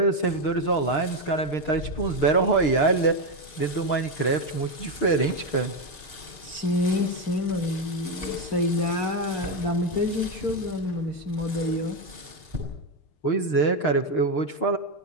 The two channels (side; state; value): right; late; 6.7 ms